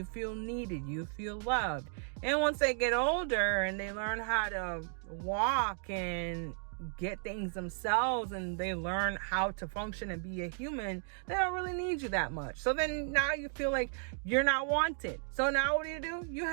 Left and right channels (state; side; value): silent; left; 55 dB below the other